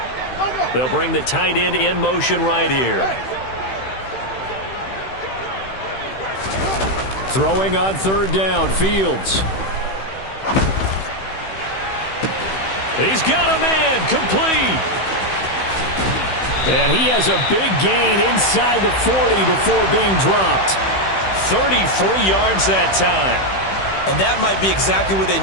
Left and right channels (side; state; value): right; late; 16 ms